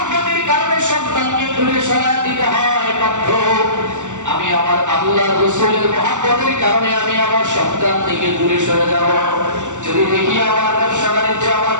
কারণে সন্তানকে দূরে সরায় দিতে হয়, বাধ্য আমি আমার আল্লাহ রাসূলের মহব্বতের কারণে আমি আমার সন্তান থেকে দূরে সরে যাব। যদি দেখি আমার ব্যবসা বাণিজ্য, আমার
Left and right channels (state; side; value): late; left; 0.85 ms